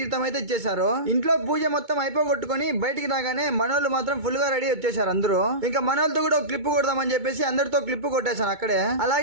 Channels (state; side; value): late; left; 2.2 ms